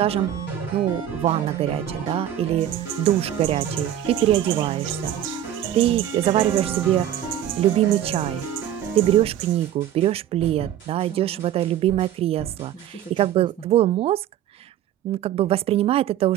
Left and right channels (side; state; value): left; quieter; 11.3 dB